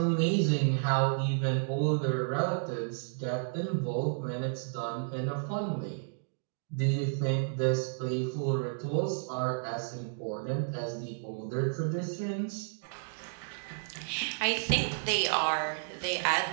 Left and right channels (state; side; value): silent; left; digital silence